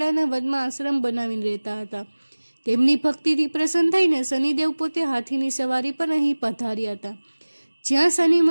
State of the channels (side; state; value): both; inverted; correlation -1.00